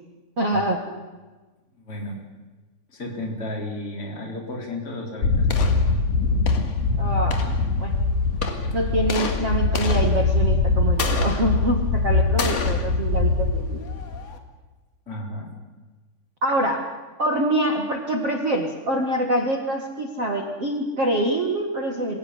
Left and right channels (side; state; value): left; late; 3.5 ms